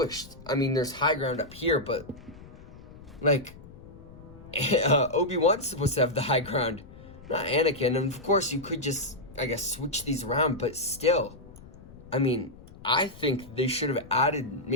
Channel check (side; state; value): left; noise; rumble, 19 dB below the sound